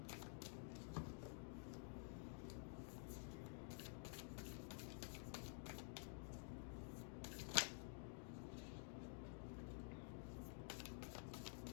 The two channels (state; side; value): silent; right; digital silence